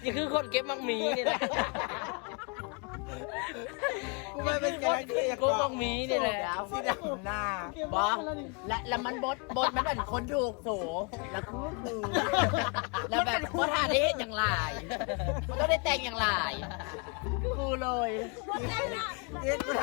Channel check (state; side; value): quieter; right; 34.4 dB